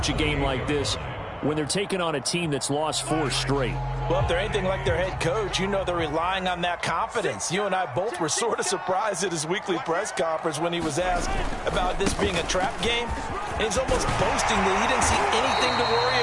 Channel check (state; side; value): identical; both; correlation 1.00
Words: a game like this when they're taking on a team that's lost 4 straight? Well, if they're anything like their head coach, they're relying on that confidence. You and I both were sort of surprised at his weekly press conference when he was asked about this being a trap game. And he's almost boasting that he didn't see anything to